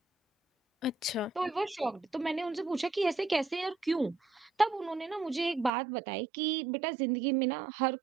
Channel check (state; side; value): drops out; left; at 5.7 s